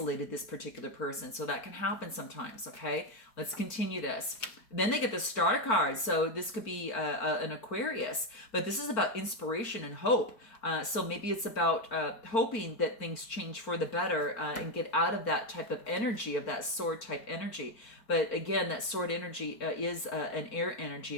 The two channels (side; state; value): right; late; 4.4 ms